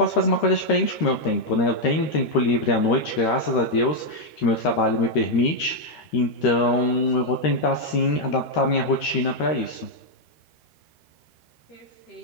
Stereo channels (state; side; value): late; right; 13 ms